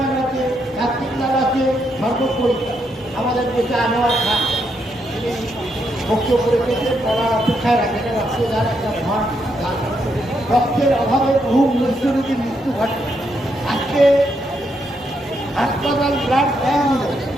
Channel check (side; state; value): both; normal; correlation 0.78